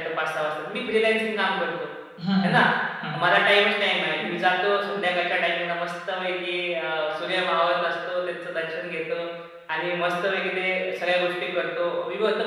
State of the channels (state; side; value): identical; both; correlation 1.00